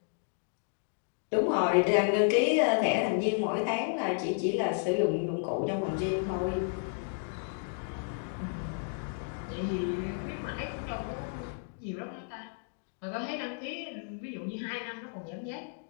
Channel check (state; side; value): silent; right; digital silence